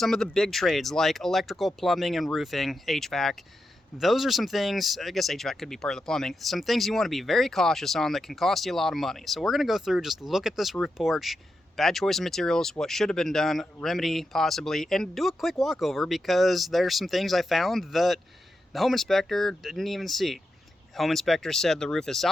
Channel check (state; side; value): normal; both; correlation 0.87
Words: of the big trades like electrical, plumbing, and roofing, HVAC, those are some things, I guess HVAC could be part of the plumbing, some things you want to be very cautious on that can cost you a lot of money. So we're going to go through, just look at this roof porch, bad choice of materials, what should have been done, remedy possibly, and do a quick walkover because there's some things I found that the home inspector didn't even see. Home inspector said the roof is